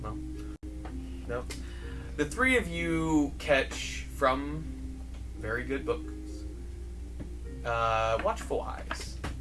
no. No. The three of you catch from very good books. Watchful Eyes.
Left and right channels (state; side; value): identical; both; correlation 1.00